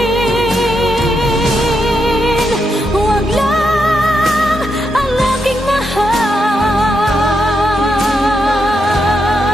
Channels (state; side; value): normal; both; correlation 0.82